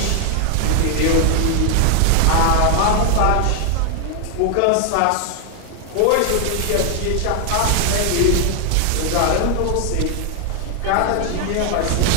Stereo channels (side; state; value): both; different; correlation 0.00